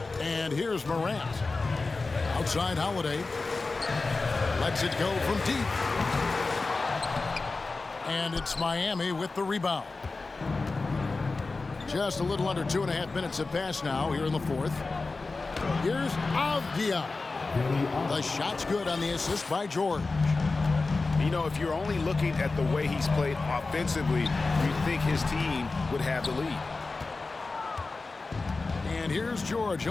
And here's Morant. Outside Holiday. Lets it go from deep. And it's Miami with the rebound. Just a little under 2.5 minutes have passed now here in the fourth. Here's Avdia. The shot's good on the assist by George. You know, if you're only looking at the way he's played offensively, you'd think his team would have the lead. And here's George.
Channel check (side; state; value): right; quieter; 3.7 dB